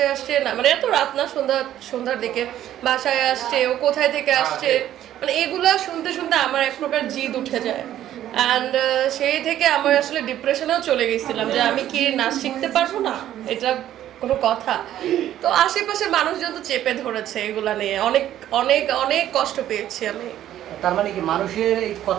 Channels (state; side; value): quieter; left; 12.1 dB